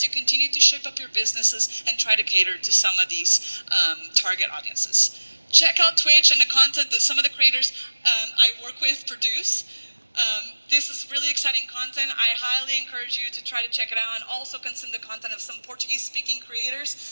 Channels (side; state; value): both; inverted; correlation -1.00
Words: you continue to shape up your businesses and try to cater to some of these target audiences. Check out Twitch and the content that some of the creators I work with produce. This is really exciting content. I highly encourage you to try to check it out and also consume the content of some Portuguese-speaking